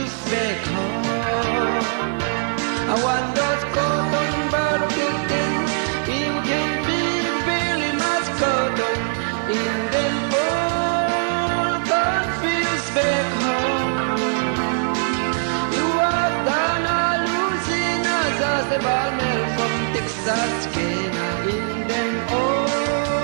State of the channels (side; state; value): left; silent; digital silence